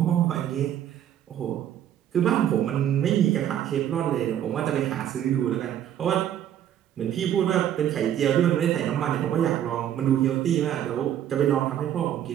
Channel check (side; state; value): left; quieter; 10.6 dB